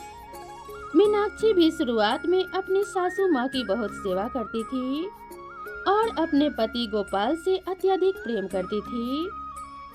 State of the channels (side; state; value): both; identical; correlation 1.00